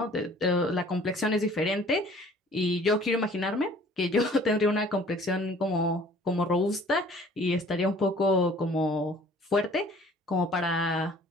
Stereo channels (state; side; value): normal; both; correlation 0.52